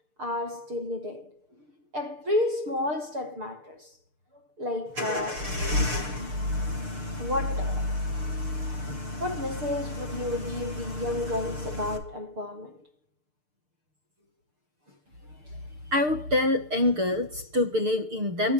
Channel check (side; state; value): left; late; 6.6 ms